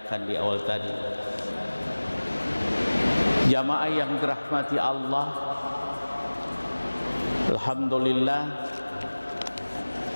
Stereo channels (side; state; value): both; inverted; correlation -1.00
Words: di awal tadi. Jamaah yang dirahmati Allah, alhamdulillah